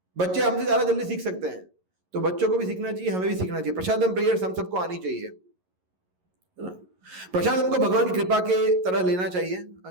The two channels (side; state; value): left; late; 11 ms